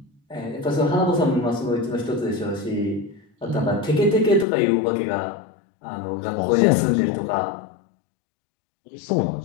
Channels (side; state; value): right; drops out; at 4.5 s